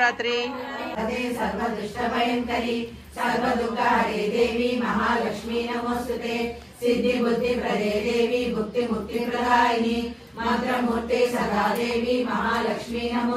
सर्वदुष्टभयंकरी सर्वदुःखहरे देवी महालक्ष्मी नमोस्तुते। सिद्धि बुद्धि प्रदे देवी भुक्ति मुक्ति प्रदायिनी मंत्रमूर्ते सदा देवी महालक्ष्मी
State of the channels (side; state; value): both; identical; correlation 1.00